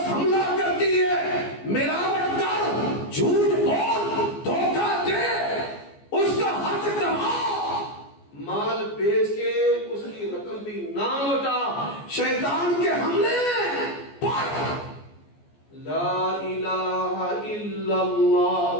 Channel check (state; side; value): late; right; 14 ms